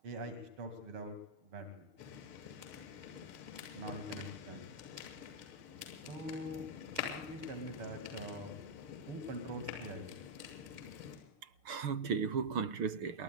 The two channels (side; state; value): left; late; 6.6 ms